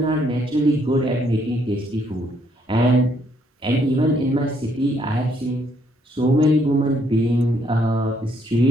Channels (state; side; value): normal; both; correlation 0.70